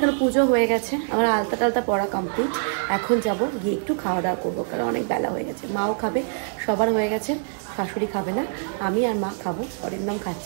পুজো হয়ে গেছে, আমার আলতা টালতা পড়া কমপ্লিট। এখন যাব গিয়ে একটু খাওয়া দাওয়া করবো, কারণ অনেক বেলা হয়ে গেছে। মাও খাবে, সবার হয়ে গেছে, শাশুড়ি খাবে না, আমি আর মা খাবো। অনেক নাম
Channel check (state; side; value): silent; left; digital silence